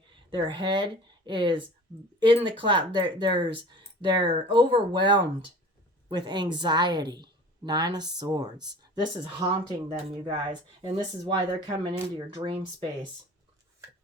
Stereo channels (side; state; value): both; normal; correlation 0.42